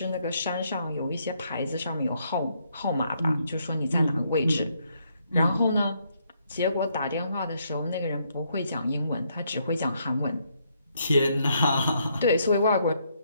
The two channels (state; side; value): inverted; both; correlation -0.74